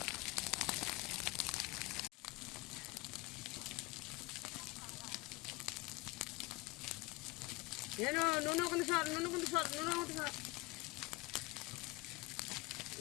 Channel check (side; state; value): right; quieter; 23.2 dB